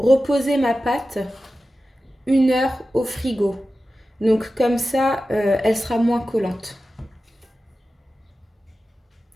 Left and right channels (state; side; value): normal; both; correlation 0.94